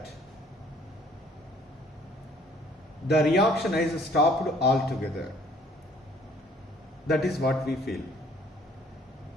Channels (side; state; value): both; normal; correlation 0.58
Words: the reaction is stopped altogether. That is what we feel.